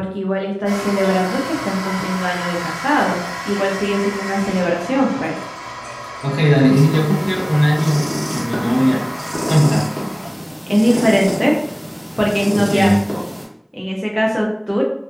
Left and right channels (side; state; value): both; identical; correlation 1.00